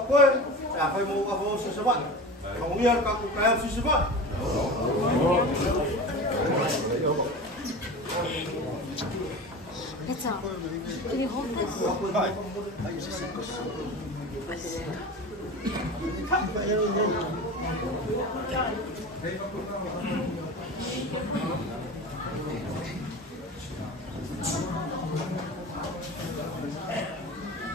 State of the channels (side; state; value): both; normal; correlation 0.32